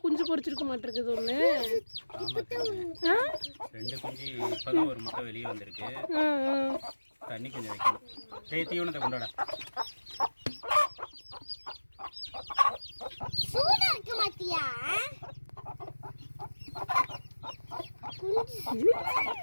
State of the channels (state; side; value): inverted; both; correlation -1.00